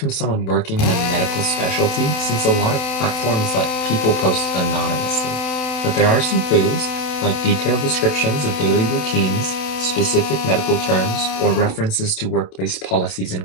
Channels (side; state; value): right; late; 27 ms